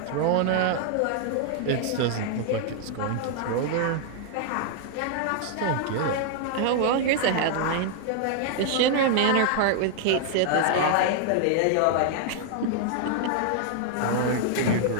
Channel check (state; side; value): different; both; correlation 0.00